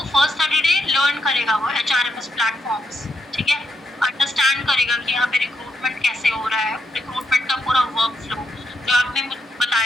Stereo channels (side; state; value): both; normal; correlation 0.80